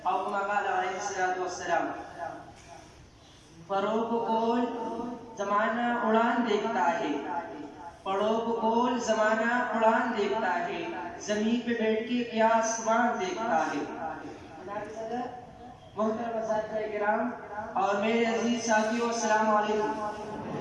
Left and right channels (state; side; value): identical; both; correlation 1.00